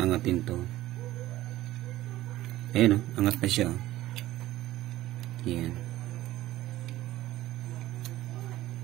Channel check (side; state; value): left; quieter; 15.6 dB